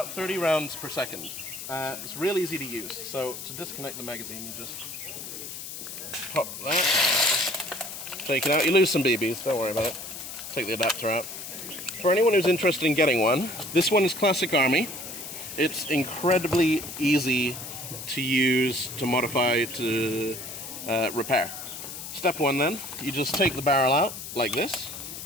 30 rounds per second. It's real easy to use. So to disconnect the magazine, you just pop that, take it out. You lose some BBs, don't worry about it. Take the adapter out. For anyone who's interested in getting one, this one is Classic Army. It's incredibly easy to use, to modify, to repair. Step one then, you just take the barrel out like this.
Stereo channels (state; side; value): noise; left; hiss, 9 dB below the sound